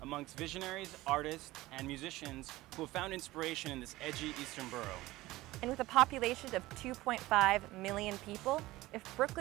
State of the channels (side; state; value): left; quieter; 18.2 dB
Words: amongst visionaries, artists, and musicians who have found inspiration in this edgy eastern borough. And with a population of 2.5 million people, if